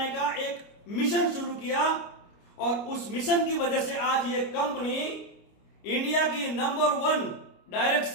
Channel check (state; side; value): late; right; 29 ms